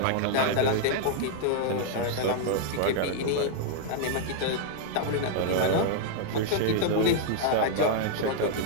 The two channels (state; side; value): different; both; correlation -0.01